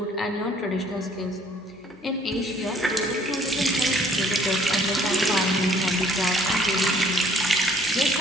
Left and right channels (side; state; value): both; normal; correlation 0.60